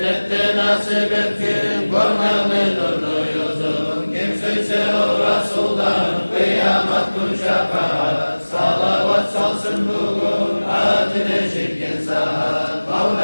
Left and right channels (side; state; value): both; inverted; correlation -1.00